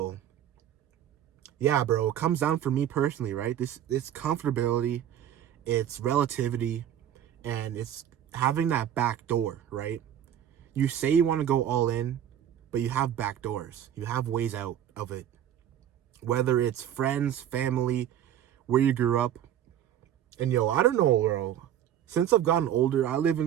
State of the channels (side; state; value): left; quieter; 10.5 dB